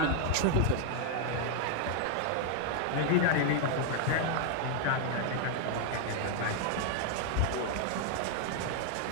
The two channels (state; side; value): different; both; correlation 0.00